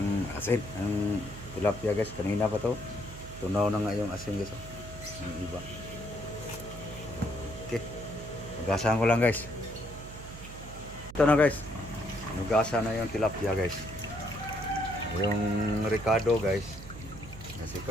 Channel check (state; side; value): noise; right; hum, 13 dB below the sound